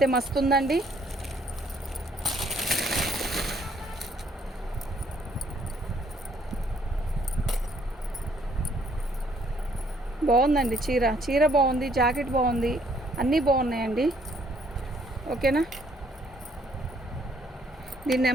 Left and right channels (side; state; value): both; normal; correlation 0.65